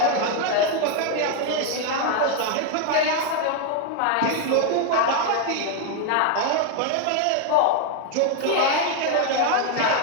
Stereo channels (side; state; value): both; different; correlation 0.01